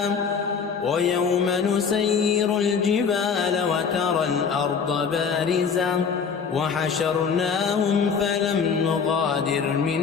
ويوم نسير الجبال وترى الأرض بارزة وحشرناهم فلم نغادر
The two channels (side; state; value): right; quieter; 6.1 dB